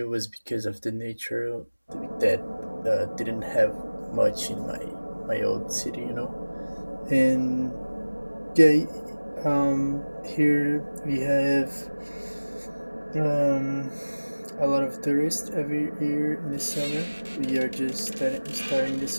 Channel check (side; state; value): both; inverted; correlation -1.00